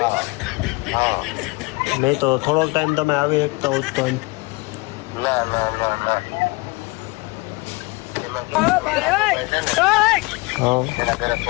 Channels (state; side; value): quieter; right; 25.3 dB